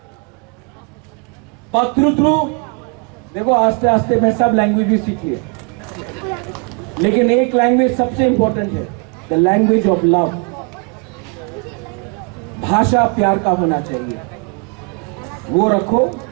पत्रुत्रु, देखो आस्ते आस्ते मैं सब लैंग्वेज भी सीख लिया, लेकिन एक लैंग्वेज सबसे इंपॉर्टेंट है, द लैंग्वेज ऑफ लव। भाषा प्यार का होना चाहिए, वो रखो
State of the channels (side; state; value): left; quieter; 33.9 dB